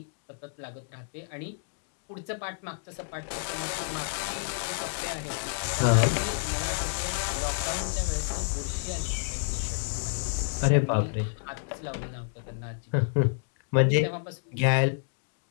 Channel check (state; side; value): silent; right; digital silence